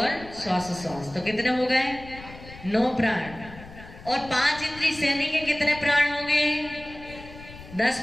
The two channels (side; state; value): left; noise; rumble, 17 dB below the sound